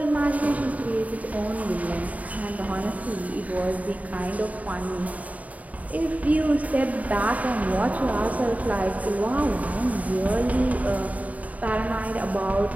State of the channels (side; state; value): left; late; 0.071 ms